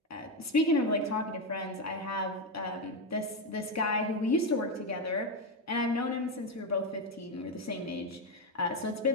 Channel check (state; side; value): normal; both; correlation 0.09